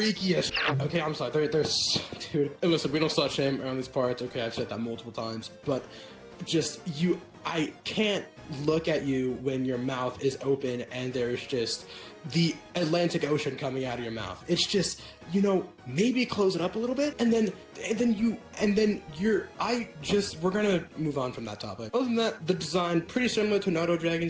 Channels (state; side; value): identical; both; correlation 1.00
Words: as shit. Okay, I'm sorry. They're dude. And listen, we don't slut shame around these parts. Okay, I've said that multiple times, but just I can't look at you when your mouth is open and there's just the Atlantic Ocean coming out of your mouth. It's just, you know, maybe close it up a little bit, and then we're gonna move on from that topic. Other than that, the design pretty similar to Nardo